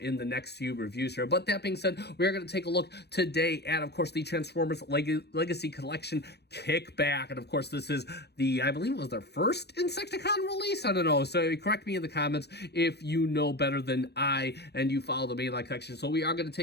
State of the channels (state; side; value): late; right; 0.48 ms